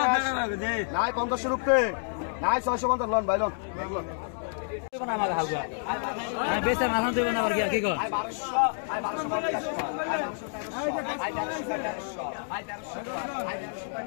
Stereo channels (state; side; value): silent; right; digital silence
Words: নাই 50 রুপে নাই 650 লন ভাই লন